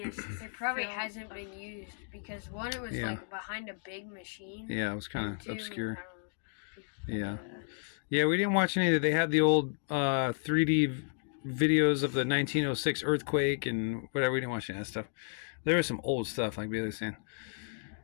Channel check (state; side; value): silent; right; 56 dB below the other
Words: It probably hasn't been used because one, it was Yeah. behind a big machine. Yeah, it was kind and of two, obscure. I don't know. Yeah. Yeah, we didn't watch any of it. They had the old 3D videos of the 1906 earthquake and whatever. We didn't watch any of that stuff. There was some old stuff, like Bailey was saying.